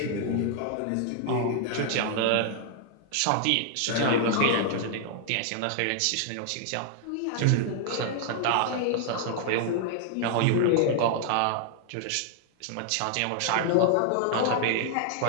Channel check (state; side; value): different; both; correlation 0.00